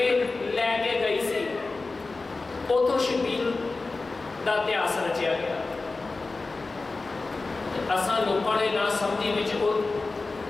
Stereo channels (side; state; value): right; quieter; 3.6 dB